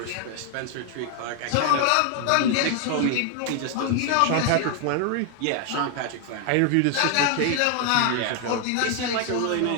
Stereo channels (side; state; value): both; different; correlation 0.00